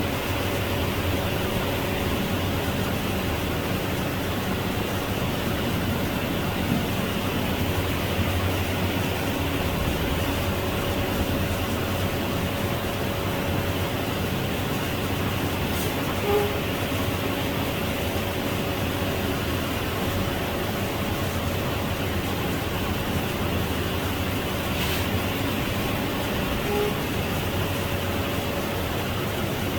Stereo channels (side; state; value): both; identical; correlation 1.00